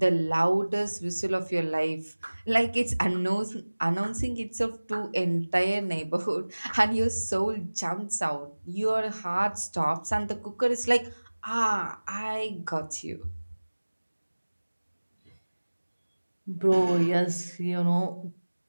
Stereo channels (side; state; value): both; inverted; correlation -1.00